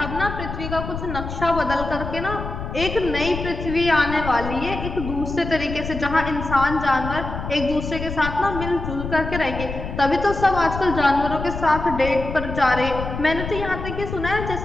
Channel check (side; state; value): left; noise; rumble, 7 dB below the sound